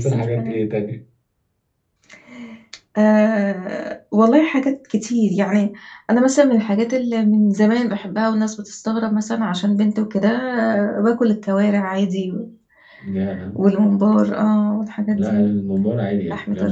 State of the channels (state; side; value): identical; both; correlation 1.00